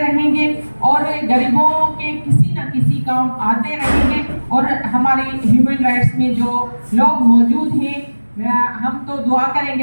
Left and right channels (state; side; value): inverted; both; correlation -1.00